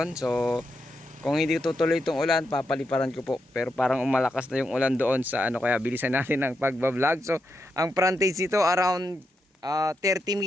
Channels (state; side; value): normal; both; correlation 0.84